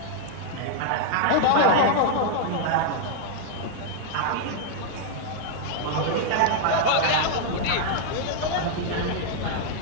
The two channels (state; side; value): different; both; correlation 0.00